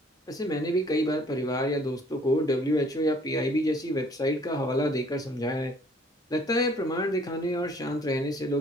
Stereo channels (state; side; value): normal; both; correlation 0.58